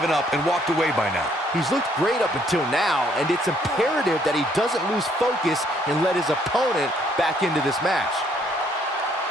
up and walked away by now. He's looked great up until now, and it's imperative that he doesn't lose focus and let his opponent back into this match.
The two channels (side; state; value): both; normal; correlation 0.66